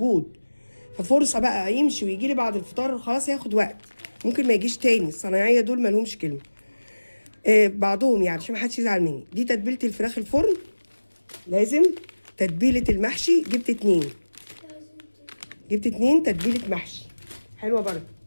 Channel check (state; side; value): inverted; both; correlation -1.00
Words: ففرصه بقى يمشي ويجي لي بعد الفطار، خلاص هياخد وقت، ممكن ما يجيش تاني. الصنايعيه دول ما لهمش كلمه. بعضهم يعني عشان ما حدش يزعل مني. دي تتبيله الفراخ الفرن لازم. تتبيله المحشي جبت 2. جبت 2 تتبيله محشي حلوه برضه.